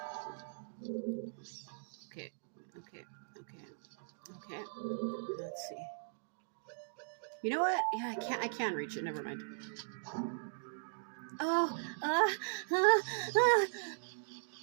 Okay. Let's see. You know what? Yeah, I can reach it. Never mind. Oh, no,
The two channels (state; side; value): silent; left; digital silence